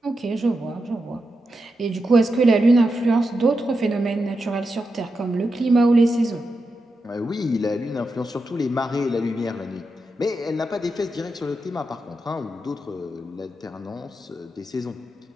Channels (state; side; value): normal; both; correlation 0.88